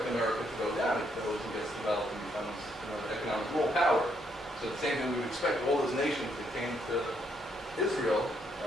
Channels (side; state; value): both; normal; correlation 0.74